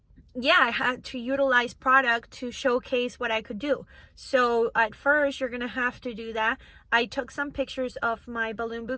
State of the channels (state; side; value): identical; both; correlation 1.00